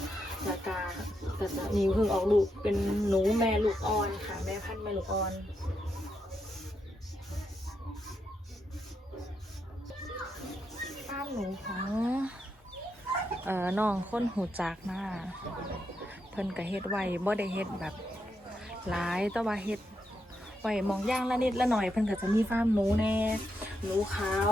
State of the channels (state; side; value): normal; both; correlation 0.82